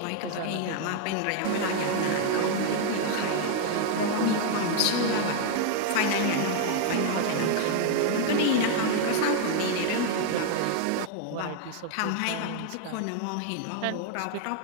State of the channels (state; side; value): different; both; correlation 0.00